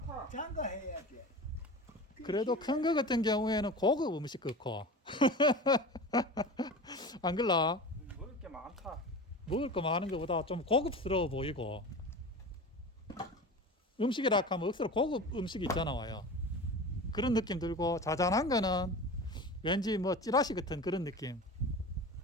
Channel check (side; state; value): both; normal; correlation 0.32